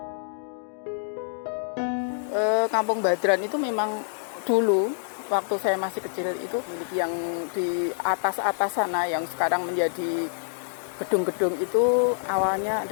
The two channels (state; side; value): silent; right; digital silence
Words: Kampung Badran itu memang dulu waktu saya masih kecil itu yang di atas-atas sana yang sekarang menjadi gedung-gedung itu awalnya